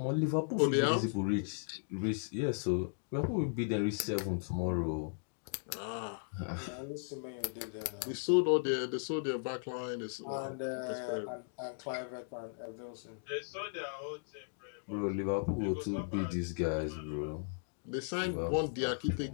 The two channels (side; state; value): right; silent; digital silence